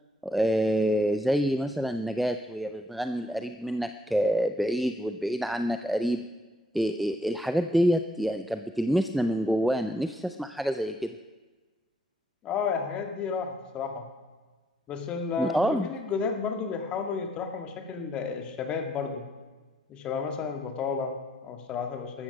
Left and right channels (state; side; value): normal; both; correlation 0.73